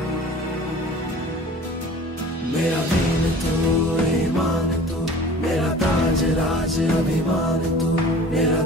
मेरा दीन तू, ईमान तू, मेरा ताज राज अभिमान तू, मेरा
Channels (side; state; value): both; normal; correlation 0.43